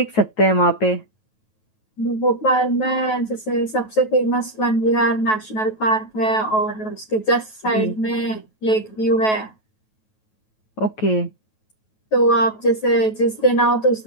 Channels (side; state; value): right; late; 9.3 ms